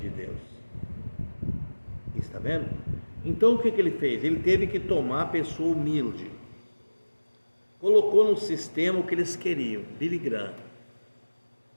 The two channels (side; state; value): both; inverted; correlation -1.00